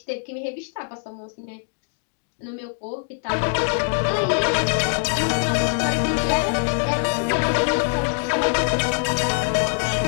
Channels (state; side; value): silent; right; digital silence